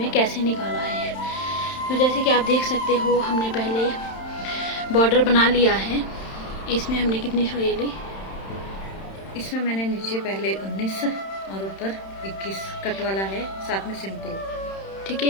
कैसे निकाला है। तो जैसे कि आप देख सकते हो, हमने पहले बॉर्डर बना लिया है। इसमें हमने कितनी सुई ली? इसमें मैंने नीचे पहले 19 और ऊपर 21 कट वाला है, साथ में सिंपल। ठीक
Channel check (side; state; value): right; late; 31 ms